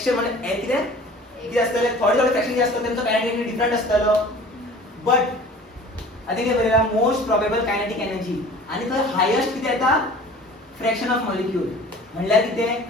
म्हणजे किती असतले थोडे फ्रॅक्शन जे असतात त्यांचा कायनेटिक एनर्जी डिफरंट असतलो बट I think बरेला मोस्ट प्रोबेबल कायनेटिक एनर्जी आणि तो हायेस्ट किती येता फ्रॅक्शन ऑफ मॉलिक्यूल म्हणल्यार किती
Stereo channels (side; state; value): both; normal; correlation 0.45